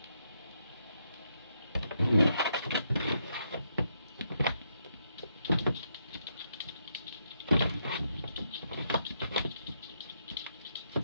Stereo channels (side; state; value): both; inverted; correlation -0.78